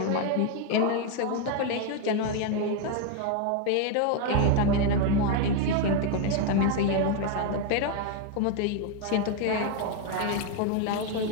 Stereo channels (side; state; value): both; different; correlation 0.01